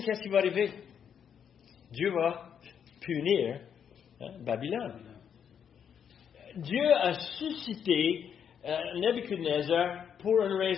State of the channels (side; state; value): right; quieter; 8.0 dB